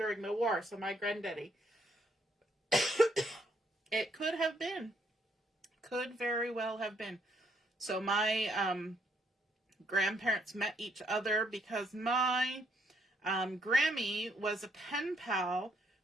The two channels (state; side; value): normal; both; correlation 0.72